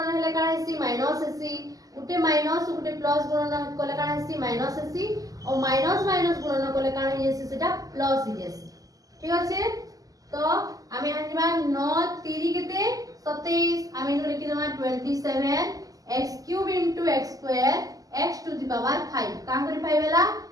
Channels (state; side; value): late; left; 0.17 ms